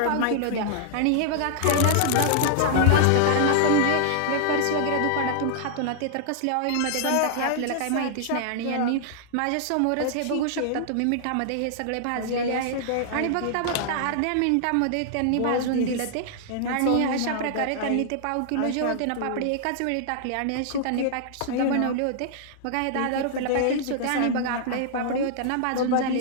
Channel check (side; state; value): both; different; correlation -0.01